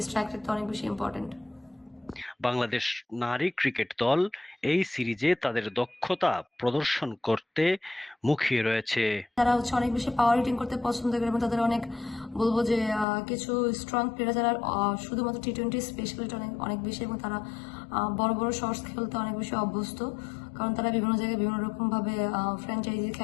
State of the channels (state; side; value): drops out; right; at 13.1 s